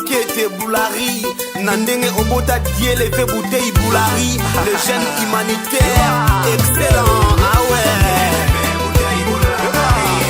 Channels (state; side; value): identical; both; correlation 1.00